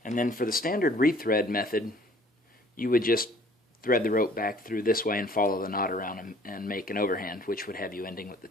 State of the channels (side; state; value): both; normal; correlation 0.55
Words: and then for the standard rethread method, you would just thread the rope back through this way and follow the knot around and make an overhand, which would have you ending with the